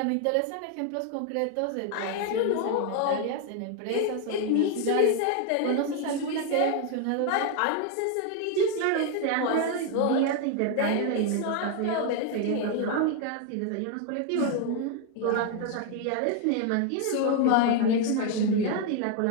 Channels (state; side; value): different; both; correlation 0.01